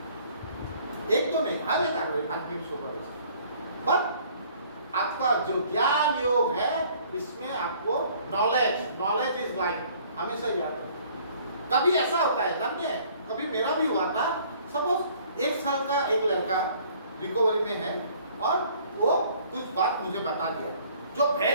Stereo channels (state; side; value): inverted; both; correlation -0.57